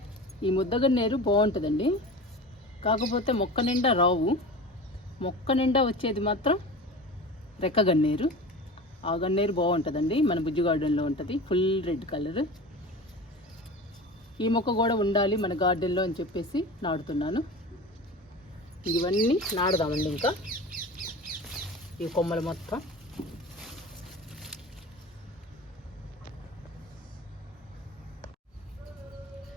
ఈ ముద్దగన్నేరు బాగుంటుందండి, కాకపోతే మొక్క నిండా రావు. మొక్క నిండా వచ్చేది మాత్రం రెక్క గన్నేరు. ఆ గన్నేరు బాగుంటుందండి, మన బుజ్జి గార్డెన్లో ఉంటుంది, ఫుల్ రెడ్ కలర్. ఈ మొక్క కూడా ఉండాలి మన గార్డెన్లో అని చెప్పేసి నాటుతున్నాను. ఇవన్నీ నాడదామండి. ఇంకా ఈ కొమ్మలు మొత్తం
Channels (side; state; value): both; normal; correlation 0.33